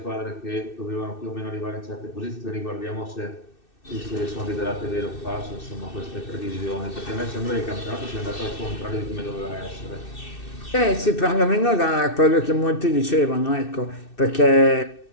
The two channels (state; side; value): late; right; 2.6 ms